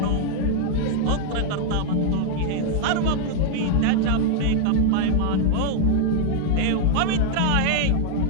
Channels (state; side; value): different; both; correlation 0.00